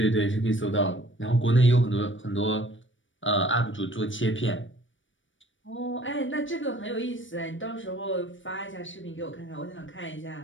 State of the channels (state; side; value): late; right; 0.56 ms